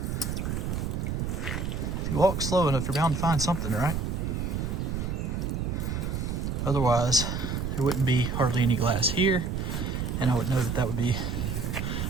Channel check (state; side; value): noise; right; rumble, 1 dB below the sound